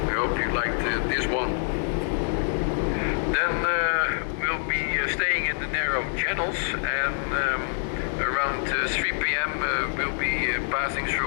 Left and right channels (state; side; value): silent; right; digital silence